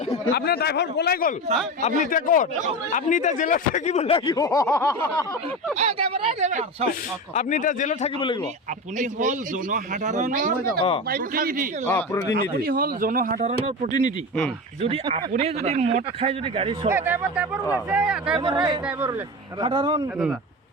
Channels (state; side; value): normal; both; correlation 0.24